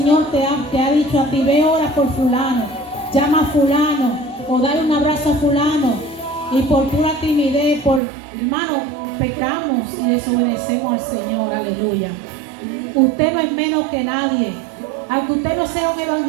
te ha dicho a ti, ve, ora por fulano, llama a fulano, o dale un abrazo a fulano, y por pura timidez, hermano, pecamos y desobedecemos al Señor, aleluya. Usted no es menos que nadie. Aunque usted no sea un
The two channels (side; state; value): left; drops out; at 8.0 s